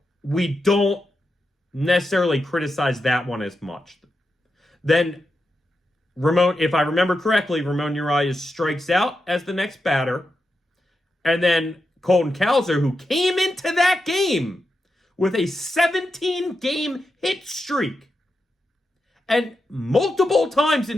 we don't necessarily criticize that one as much. Then Ramon, if I remember correctly, Ramon Urias strikes out as the next batter. And then Colton Cowser, who came into that game with a 17-game hit streak and multiple times in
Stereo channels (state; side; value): normal; both; correlation 0.88